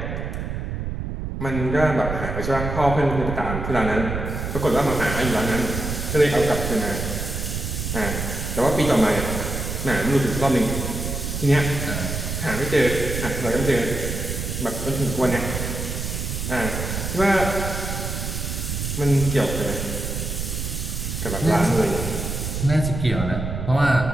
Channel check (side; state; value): right; noise; rumble, 4 dB below the sound